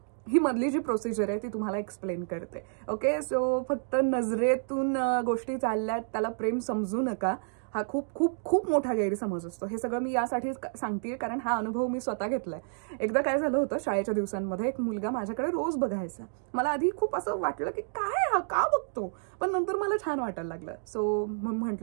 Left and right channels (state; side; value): silent; left; digital silence